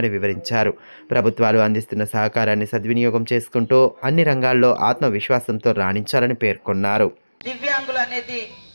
వివరించారు. ప్రభుత్వాలు అందిస్తున్న సహకారాన్ని సద్వినియోగం చేసుకుంటూ అన్ని రంగాల్లో ఆత్మవిశ్వాసంతో రాణించాలని పేర్కొన్నారు. దివ్యాంగులు అనేది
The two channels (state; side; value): inverted; both; correlation -1.00